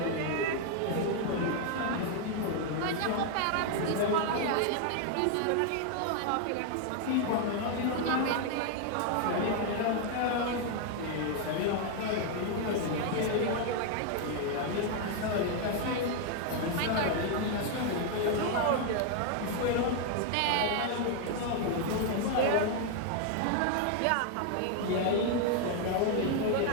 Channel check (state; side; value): different; both; correlation 0.00